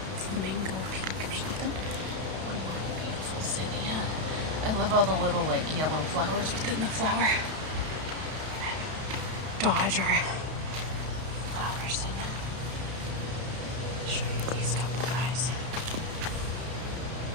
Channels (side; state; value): left; late; 32 ms